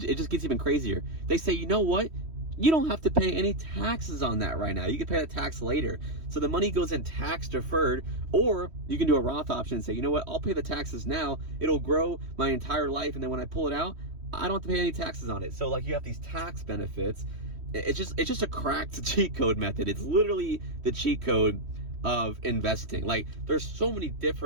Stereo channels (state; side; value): late; left; 3.1 ms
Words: just gets even crazier. They say, you know what? You don't have to pay any taxes on that right now. You can pay that tax later. So the money goes in tax deferred, or you can do a Roth option and say, you know what? I'll pay the taxes now. It'll grow my entire life. And then when I pull it out, I don't have to pay any taxes on it. So like you have these tax benefits. It's just a cracked cheat code method. It's literally the cheat code of investing. Like there's so many